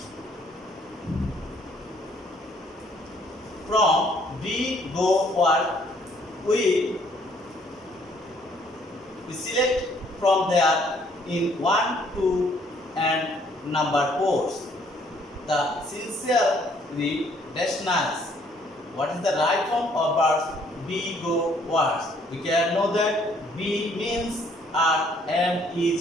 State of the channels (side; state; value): both; normal; correlation 0.64